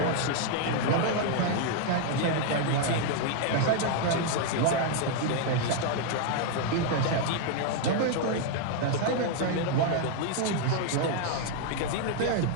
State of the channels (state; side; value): different; both; correlation 0.00